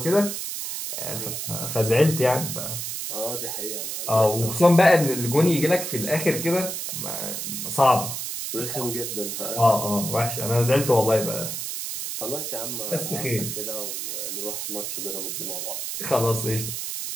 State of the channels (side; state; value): right; noise; hiss, 4 dB below the sound